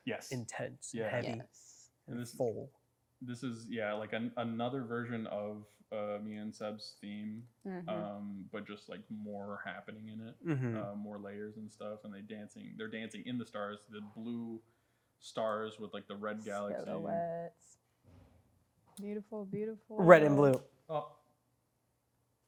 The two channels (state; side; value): identical; both; correlation 1.00